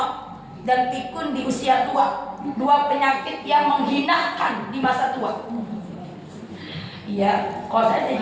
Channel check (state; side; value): identical; both; correlation 1.00